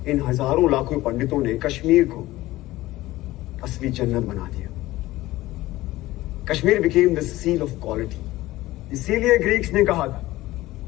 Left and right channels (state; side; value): quieter; right; 17.4 dB